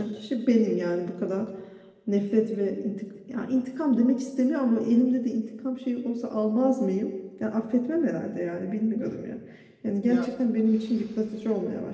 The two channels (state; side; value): identical; both; correlation 1.00